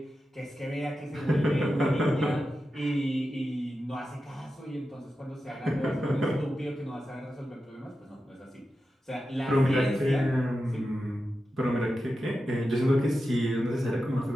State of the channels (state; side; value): normal; both; correlation 0.91